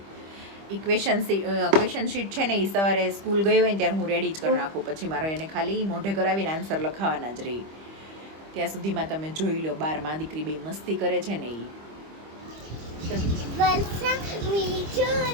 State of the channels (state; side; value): late; left; 25 ms